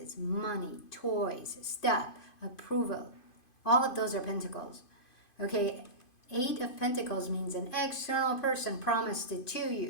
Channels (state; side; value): late; right; 2.5 ms